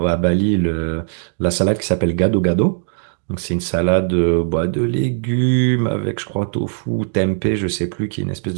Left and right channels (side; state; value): left; silent; digital silence